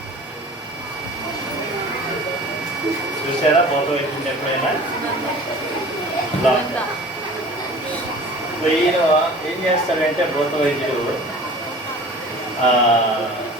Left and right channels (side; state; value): both; normal; correlation 0.42